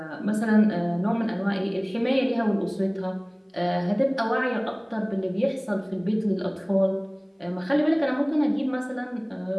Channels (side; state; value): both; identical; correlation 1.00